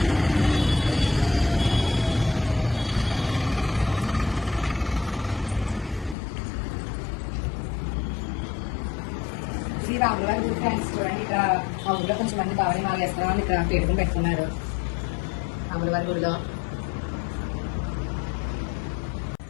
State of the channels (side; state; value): right; drops out; at 6.2 s